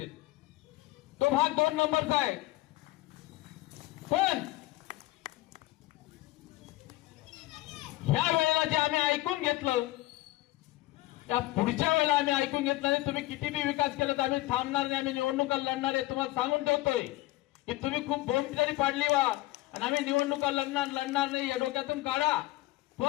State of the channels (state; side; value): quieter; right; 18.1 dB